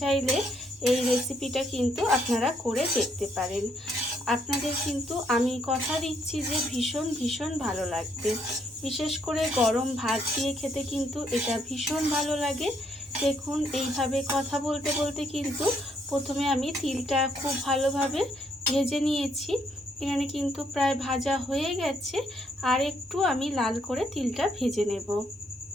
চাইলে এই রেসিপিটা কিন্তু আপনারা করে দেখতে পারেন। আপনাদের কিন্তু আমি কথা দিচ্ছি যে ভীষণ ভীষণ ভালো লাগবে। বিশেষ করে গরম ভাত দিয়ে খেতে কিন্তু এটা ভীষণ ভালো লাগে। দেখুন এইভাবে কথা বলতে বলতে কিন্তু প্রথমে আমি তিলটা খুব ভালোভাবে ভেজে নিয়েছি। এখানে কিন্তু প্রায় ভাজা হয়ে গেছে। আর একটু আমি লাল করে তিলটা ভেজে নেব।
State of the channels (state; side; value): normal; both; correlation 0.72